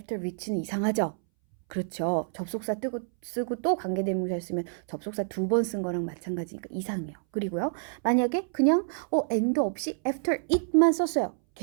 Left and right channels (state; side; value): silent; left; 59 dB below the other